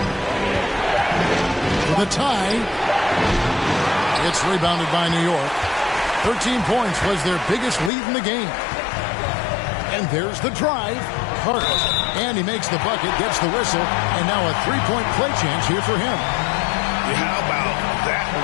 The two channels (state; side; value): drops out; right; at 7.9 s